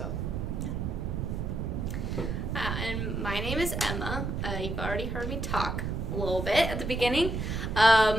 And my name is Emma. You've already heard me talk a little bit at the beginning.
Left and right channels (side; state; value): right; noise; rumble, 2 dB below the sound